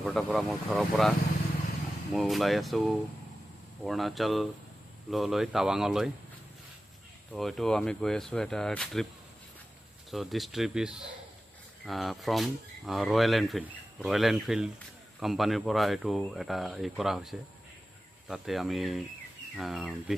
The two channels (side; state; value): both; normal; correlation 0.94